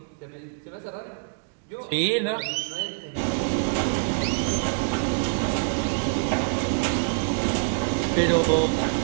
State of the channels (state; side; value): silent; left; digital silence